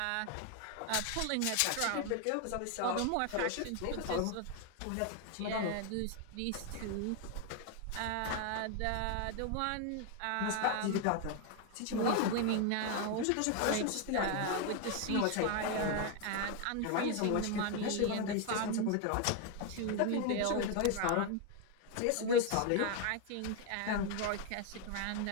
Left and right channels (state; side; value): different; both; correlation 0.01